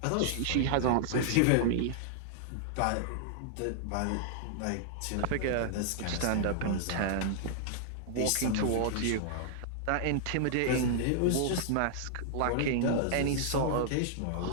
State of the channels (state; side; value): different; both; correlation -0.01